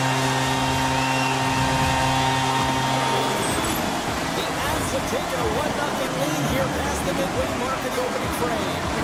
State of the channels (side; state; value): both; identical; correlation 1.00